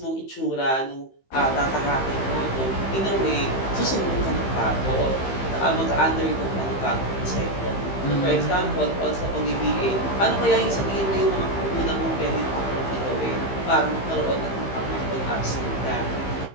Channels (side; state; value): right; late; 15 ms